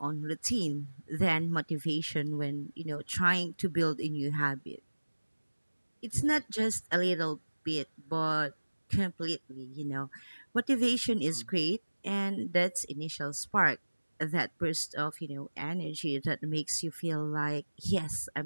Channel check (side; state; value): both; inverted; correlation -1.00